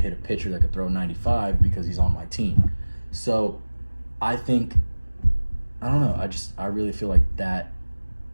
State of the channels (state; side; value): inverted; both; correlation -1.00